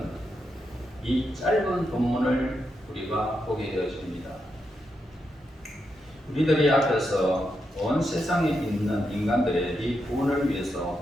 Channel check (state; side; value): normal; both; correlation 0.84